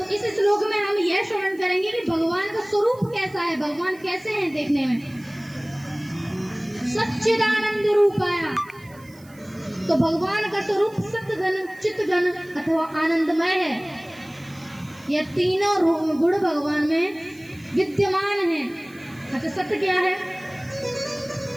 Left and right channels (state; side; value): noise; right; hiss, 26 dB below the sound